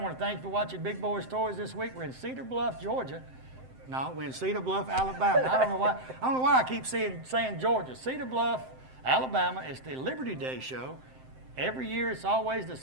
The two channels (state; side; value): late; left; 7.7 ms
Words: want to thank you for watching Big Boyz Toys this week. We're in Cedar Bluff, Georgia. No, we're in Cedar Bluff, Alabama. I don't know why I keep saying Georgia. Cedar Bluff, Alabama. It's the Liberty Day show. Every year, it's always the